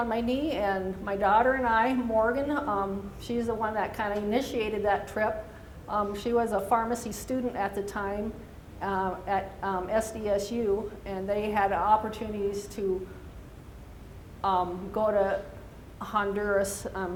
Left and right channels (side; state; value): both; identical; correlation 1.00